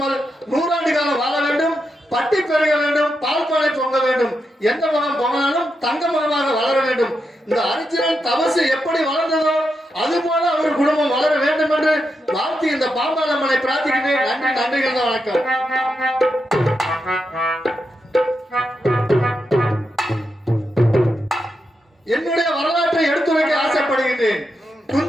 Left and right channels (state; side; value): normal; both; correlation 0.85